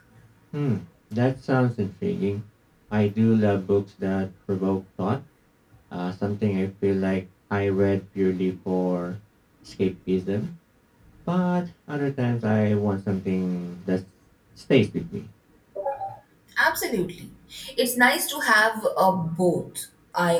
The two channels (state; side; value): identical; both; correlation 1.00